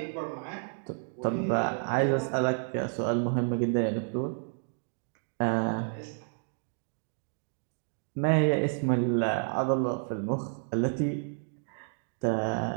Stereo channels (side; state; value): left; silent; 57 dB below the other